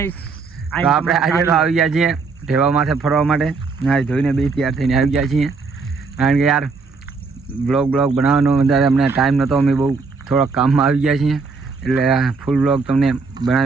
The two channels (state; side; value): quieter; left; 4.5 dB